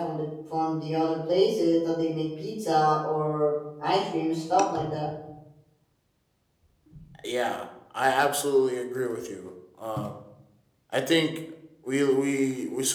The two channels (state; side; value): identical; both; correlation 1.00